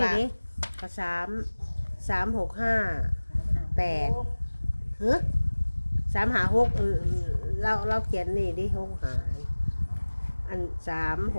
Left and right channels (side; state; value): both; inverted; correlation -1.00